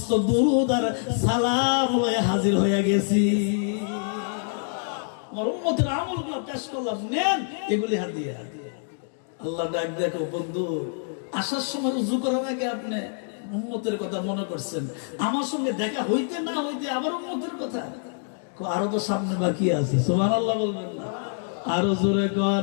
দুরূদ আর সালাম লয়ে হাজির হয়ে গেছি, আমার উম্মতের আমলগুলো পেশ করলাম, নেন এগুলি হাদিয়া। আল্লাহ ডাক দেখো বন্ধু, আসার সময় উযু করার আগে আপনি উম্মতের কথা মনে করছেন, আমার সঙ্গে দেখা হইতে না হইতে আবার উম্মতের কথা, আরো তো সামনে বাকি আছে। সুবহানাল্লাহ বলবেন না? আরো জোরে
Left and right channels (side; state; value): right; silent; 58 dB below the other